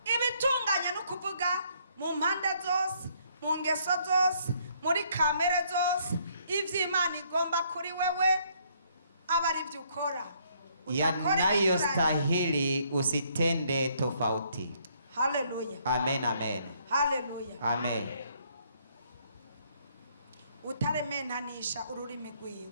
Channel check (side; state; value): both; inverted; correlation -0.67